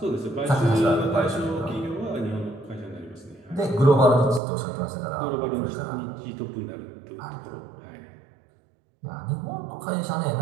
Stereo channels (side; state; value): left; drops out; at 4.4 s